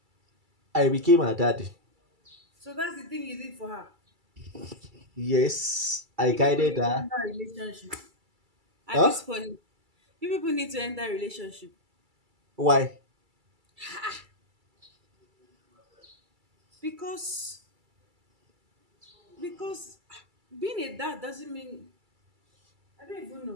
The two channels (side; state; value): left; late; 2.3 ms